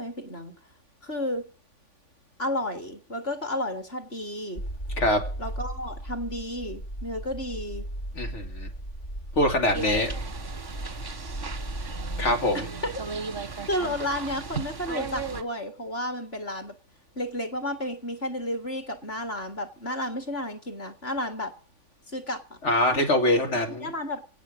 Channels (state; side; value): late; right; 3.5 ms